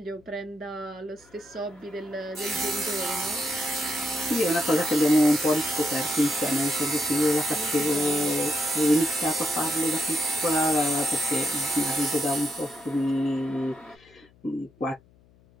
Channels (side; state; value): left; noise; hum, 29 dB below the sound